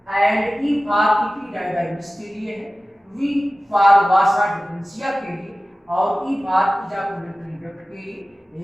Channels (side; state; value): both; normal; correlation 0.96